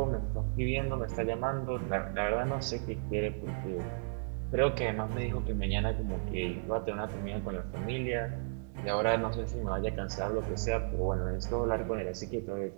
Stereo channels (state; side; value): silent; left; digital silence